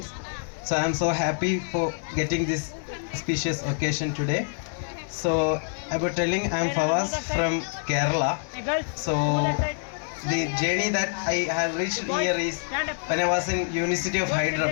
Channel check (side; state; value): right; silent; digital silence